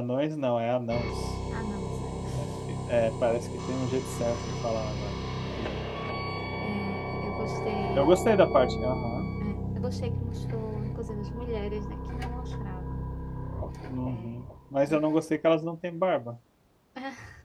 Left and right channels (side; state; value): both; identical; correlation 1.00